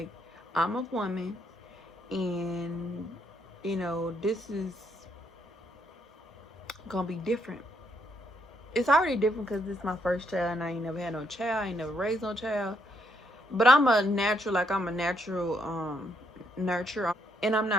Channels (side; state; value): both; normal; correlation 0.74